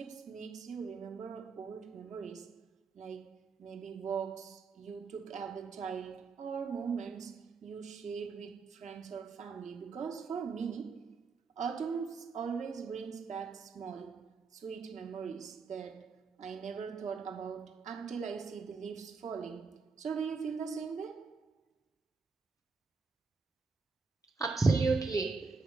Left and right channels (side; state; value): left; quieter; 4.6 dB